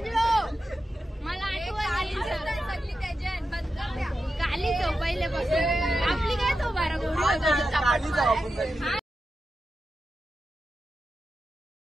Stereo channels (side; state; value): both; normal; correlation 0.90